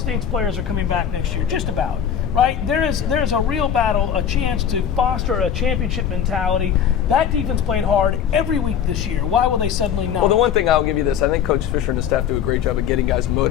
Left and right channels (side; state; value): right; quieter; 8.7 dB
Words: players are coming back next year, just about. Right? There's a real battle, a chance to foster a championship mentality. That defense played hard every week this year. Why will they suddenly not? Well, the one thing I'll give you this, I think Coach Fisher and his staff do a great job of getting guys